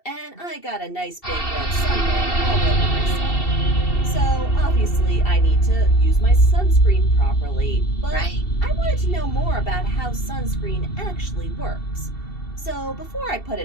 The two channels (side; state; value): right; late; 2.7 ms